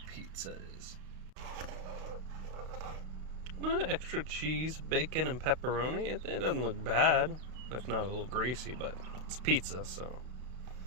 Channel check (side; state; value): left; late; 32 ms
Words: pizza is. Extra cheese, bacon, and pepperoni. It doesn't look bad, if not a little greasy, but it's pizza, so